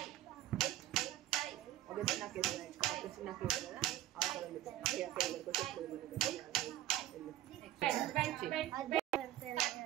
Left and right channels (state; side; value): quieter; left; 13.4 dB